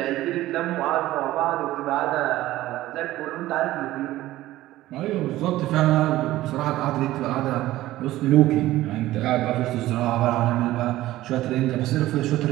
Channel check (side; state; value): left; quieter; 15.8 dB